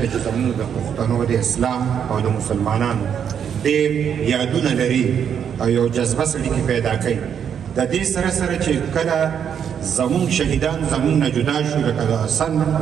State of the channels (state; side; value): quieter; left; 8.2 dB